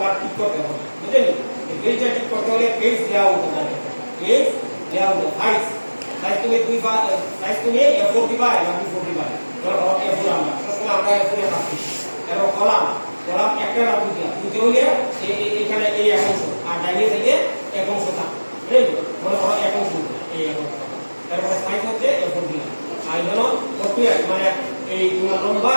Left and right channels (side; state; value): both; inverted; correlation -1.00